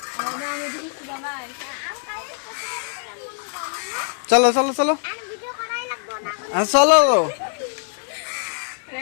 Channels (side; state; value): right; silent; 63 dB below the other